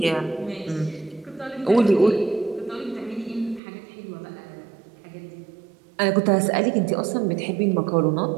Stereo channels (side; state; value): left; drops out; at 3.6 s